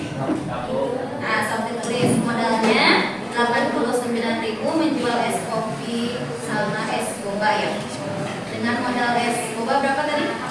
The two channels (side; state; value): both; identical; correlation 1.00